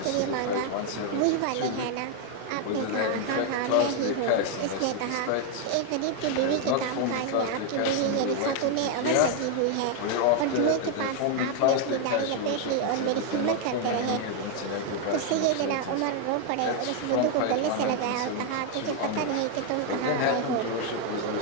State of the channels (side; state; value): both; different; correlation 0.01